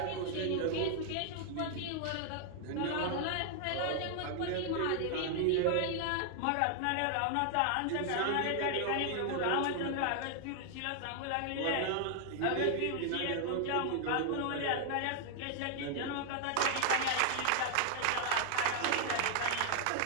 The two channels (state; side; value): different; both; correlation 0.00